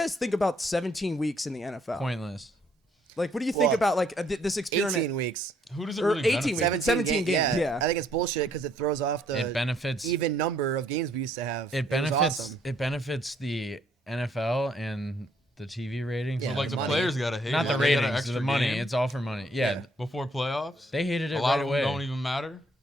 think about 17 weeks in the NFL? Pointless. Like, what do you think Well, about like this experiment? 18 weeks. Who does it Or really 18 benefit? weeks. 17 games, yeah. I think it's bullshit because it throws off the It benefits even number of games we used to have. It benefits was awesome. it benefits the NFL and the TV ratings. Yeah, But like the money. players gotta hate Not it. the They got an ratings, extra the money. game It's all for money. Yeah, before playoffs. they hated it A lot right of away. them don't even matter.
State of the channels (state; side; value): normal; both; correlation 0.67